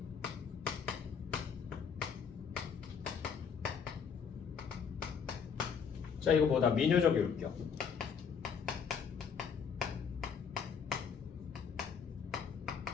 자, 이거 뭐다? 민요적 율격.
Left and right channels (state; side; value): quieter; right; 6.6 dB